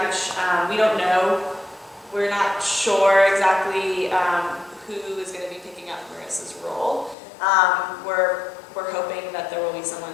we don't know. We're not sure exactly who is going to be picking up Marissa's role. We're hoping that there will be someone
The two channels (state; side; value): drops out; right; at 7.2 s